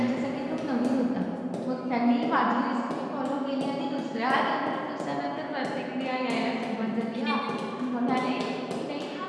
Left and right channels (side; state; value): both; identical; correlation 1.00